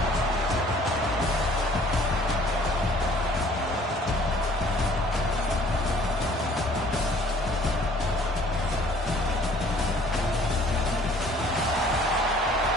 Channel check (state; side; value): normal; both; correlation 0.55